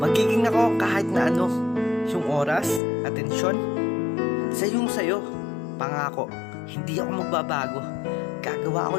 Magiging ako kahit na ano. Yung oras, atensyon, sa'yo. Pangako, hindi ako magbabago. Gagawa ako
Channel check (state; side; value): drops out; right; at 2.8 s